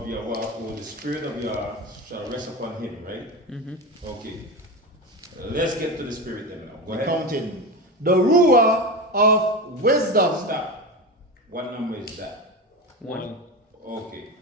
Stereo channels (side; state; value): both; normal; correlation 0.22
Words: Yahweh, or the Spirit of Yahweh, shall rest upon him, right? Okay. Let's get to the Spirit then now. Go ahead. Counting. The Ruah of wisdom Stop. What number is that? 1. Okay,